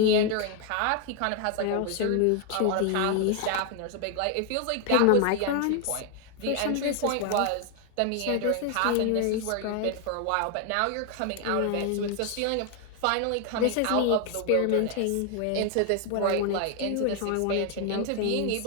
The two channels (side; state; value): both; different; correlation 0.00